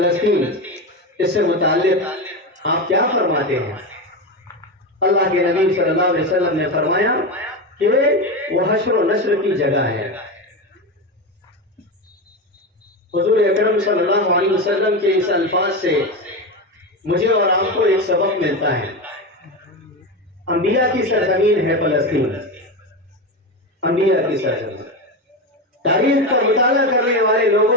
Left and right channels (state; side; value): normal; both; correlation 0.17